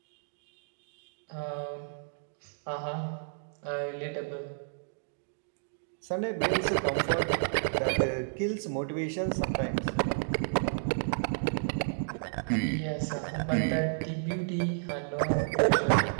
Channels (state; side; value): silent; left; digital silence